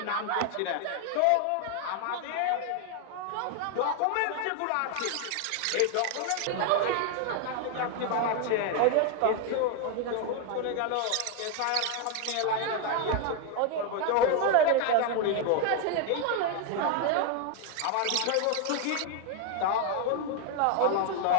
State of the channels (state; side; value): different; both; correlation 0.01